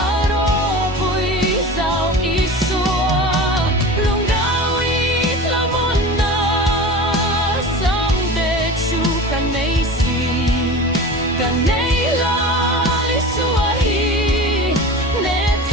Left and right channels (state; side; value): normal; both; correlation 0.33